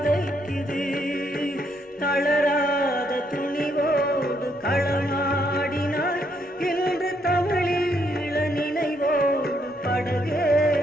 தளராத துணிவோடு களமாடினாய், இன்று தமிழீழ நினைவோடு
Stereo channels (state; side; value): normal; both; correlation 0.74